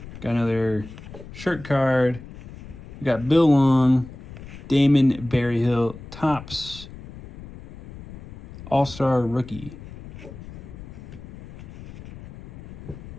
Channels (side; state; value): left; noise; rumble, 15 dB below the sound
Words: Got another shirt card. We got Bill Long, Damon Berryhill, Topps, All-Star Rookie,